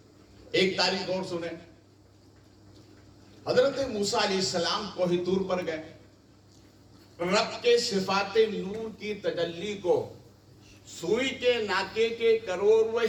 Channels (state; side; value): identical; both; correlation 1.00